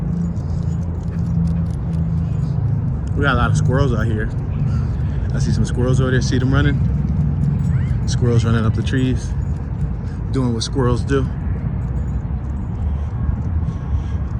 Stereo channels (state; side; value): identical; both; correlation 1.00